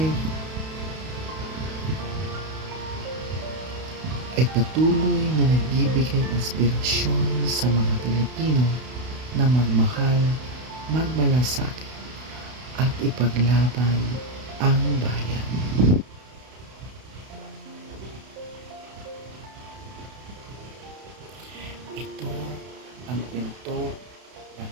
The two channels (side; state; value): left; late; 32 ms